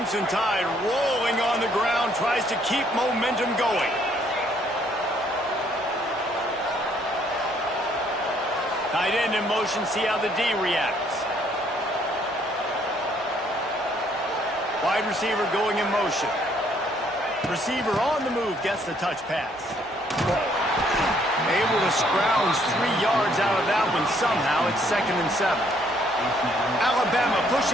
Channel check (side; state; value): both; normal; correlation 0.66